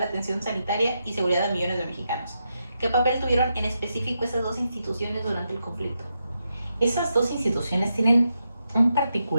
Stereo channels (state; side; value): inverted; both; correlation -0.85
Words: atención sanitaria y seguridad a millones de mexicanos. ¿Qué papel tuvieron en específico esas dos instituciones durante el conflicto? Esas dos instituciones tienen un